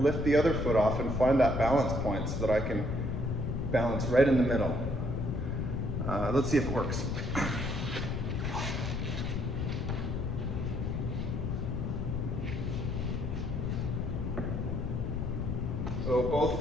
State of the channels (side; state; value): left; noise; rumble, 1 dB below the sound